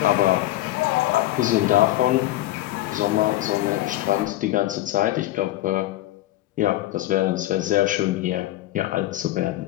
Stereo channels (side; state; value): right; quieter; 15.7 dB